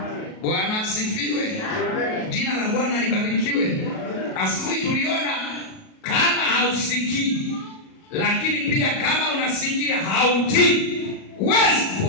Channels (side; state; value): right; late; 37 ms